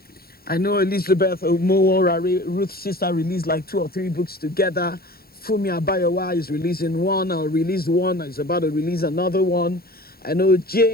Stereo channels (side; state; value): right; late; 0.44 ms